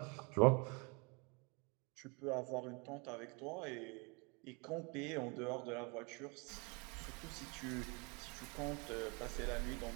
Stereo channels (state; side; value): quieter; left; 31.4 dB